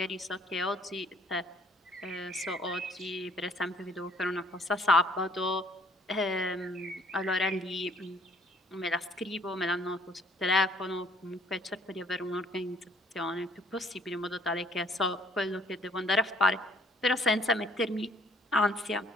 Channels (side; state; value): both; normal; correlation 0.60